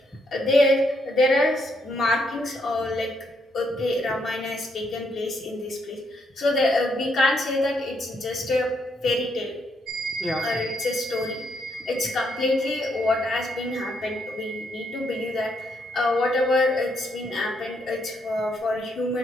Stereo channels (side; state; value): both; normal; correlation 0.75